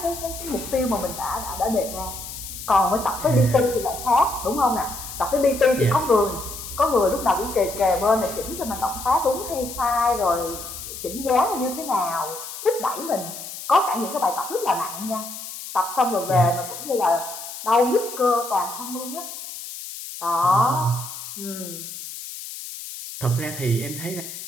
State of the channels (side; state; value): left; noise; hiss, 10 dB below the sound